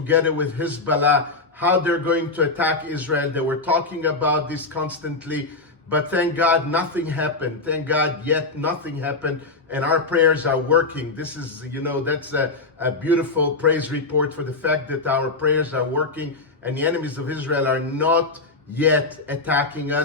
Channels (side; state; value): right; quieter; 3.6 dB